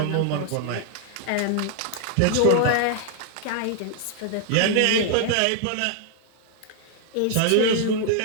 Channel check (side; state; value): both; different; correlation 0.00